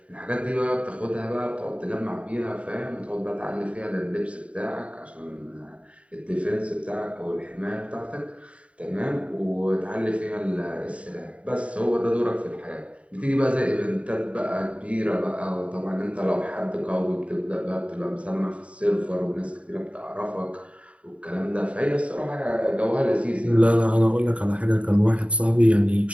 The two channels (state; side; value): late; left; 0.063 ms